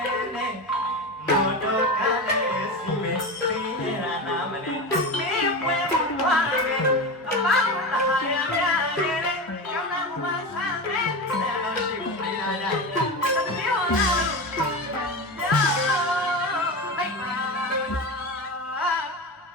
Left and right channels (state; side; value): normal; both; correlation 0.22